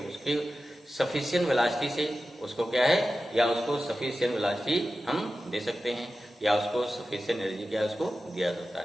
सफिशिएंट वेलोसिटी से उसको क्या है, या उसको सफिशिएंट वेलोसिटी हम दे सकते हैं, या उसको सफिशिएंट एनर्जी क्या उसको दिया सकता है,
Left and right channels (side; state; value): both; normal; correlation 0.93